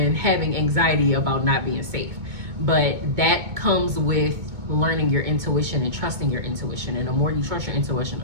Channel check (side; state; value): left; late; 2.2 ms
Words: having anxiety about not being safe. But that comes with learning your intuition and trusting your intuition. And the more you trust your intuition,